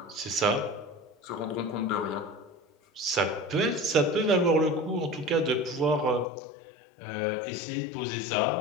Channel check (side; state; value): right; drops out; at 6.2 s